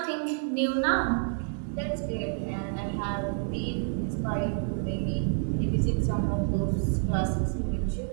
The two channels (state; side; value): silent; left; 59 dB below the other